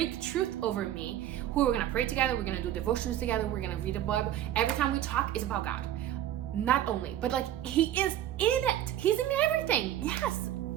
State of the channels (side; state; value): left; quieter; 12.1 dB